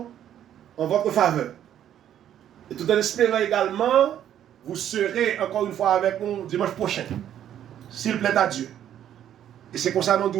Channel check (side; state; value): left; quieter; 10.6 dB